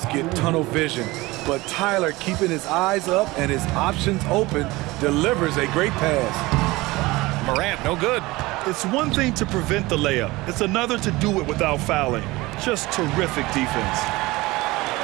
get tunnel vision, but Tyler, keeping his eyes up and his options open, delivers a great pass. Morant, no good. It's one thing to prevent the layup. It's another to do it without fouling. Just terrific defense.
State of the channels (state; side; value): quieter; left; 20.9 dB